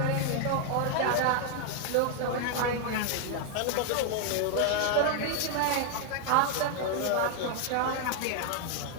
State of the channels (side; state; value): both; different; correlation 0.00